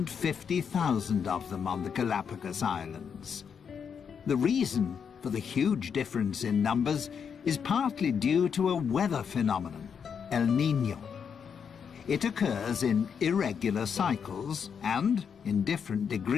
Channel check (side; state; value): right; quieter; 6.9 dB